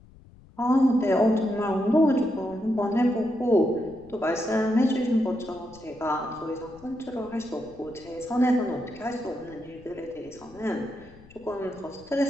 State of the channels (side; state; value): left; noise; rumble, 24 dB below the sound